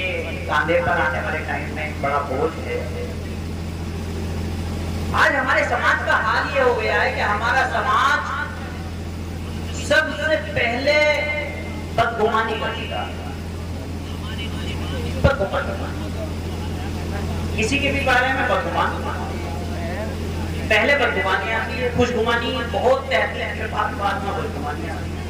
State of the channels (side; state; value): both; identical; correlation 1.00